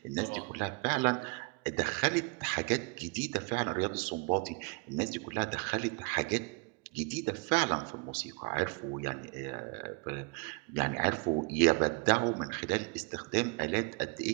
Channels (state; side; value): quieter; left; 30.5 dB